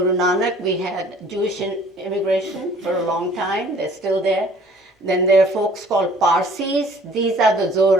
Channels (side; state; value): both; normal; correlation 0.53